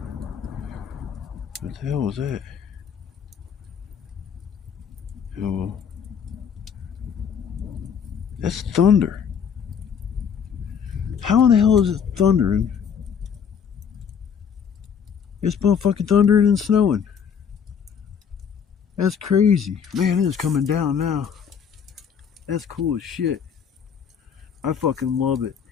the hell was that? Oh, that's thunder. How in the hell is it thundering? It's motherfucking thundering and snowing. That's crazy. Man, it is coming down now. That's cool as shit. I fucking love it.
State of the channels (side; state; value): right; quieter; 7.2 dB